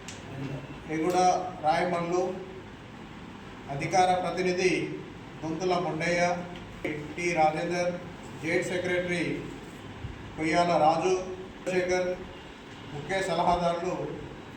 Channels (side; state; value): both; identical; correlation 1.00